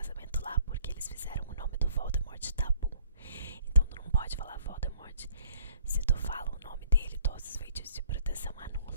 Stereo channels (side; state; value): both; inverted; correlation -0.59